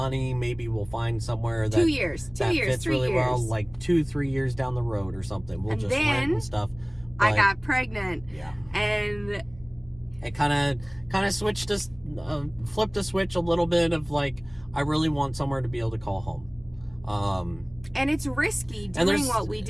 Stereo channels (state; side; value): noise; left; rumble, 23 dB below the sound